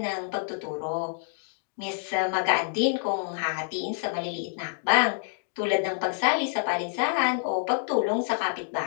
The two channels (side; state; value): right; silent; 60 dB below the other